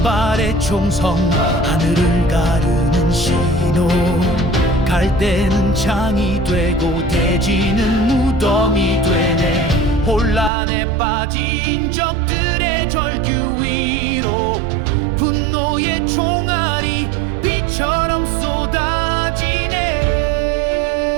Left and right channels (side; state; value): left; drops out; at 10.5 s